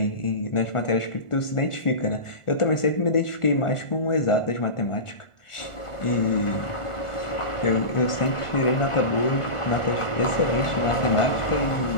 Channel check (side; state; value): right; late; 1.4 ms